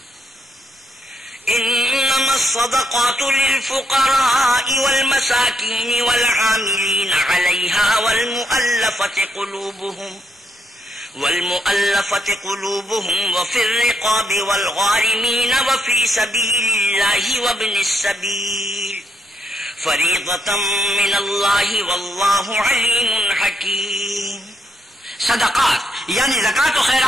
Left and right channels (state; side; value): normal; both; correlation 0.77